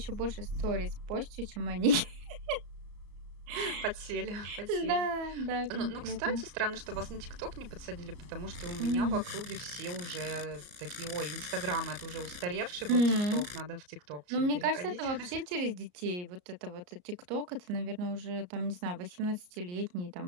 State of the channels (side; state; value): left; late; 34 ms